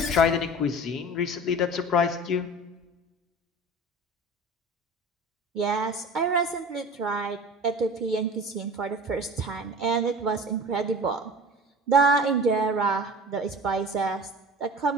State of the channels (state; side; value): normal; both; correlation 0.38